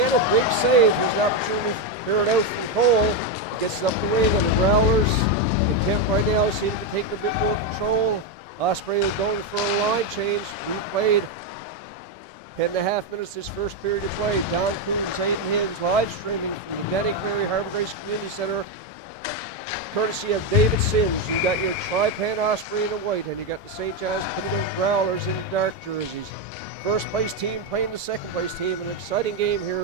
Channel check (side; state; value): both; normal; correlation 0.06